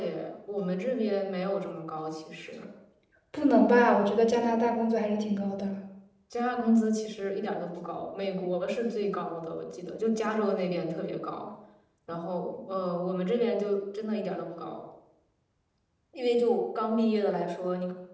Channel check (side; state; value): both; identical; correlation 1.00